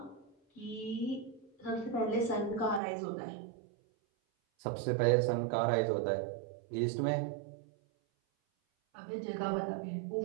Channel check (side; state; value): left; drops out; at 2.8 s